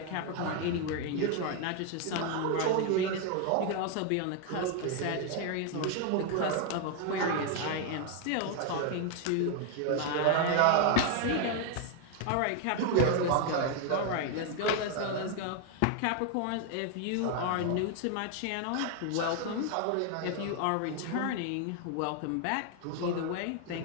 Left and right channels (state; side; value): different; both; correlation 0.01